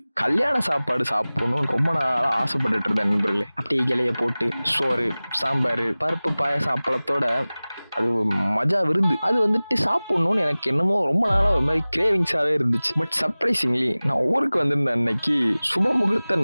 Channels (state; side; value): inverted; both; correlation -0.99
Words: கல்யாண சாப்பாடு சாப்பிடணும்னு ரொம்ப நாளாக ஆசைப்பட்டுட்டு இருந்தேன் நண்பர்களே. அப்படியே இலையை போட்டு சோறு, சாம்பார், பருப்பு, பாயாசம், அப்பளத்தோட அது மஜா விருந்து. அது வந்துட்டு சாப்பிடணும்னு எனக்கு என்னமோ ரொம்ப நாளாக ஒரு மாதிரி கிரேவிங்ஸாகவே இருந்துச்சு. பட் சர்ப்ரைசிங்லி நான் ஊருக்கு வந்திருந்த அன்னைக்கு சுப முகூர்த்த